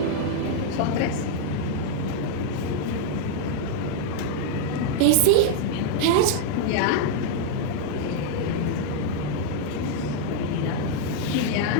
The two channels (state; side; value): different; both; correlation 0.00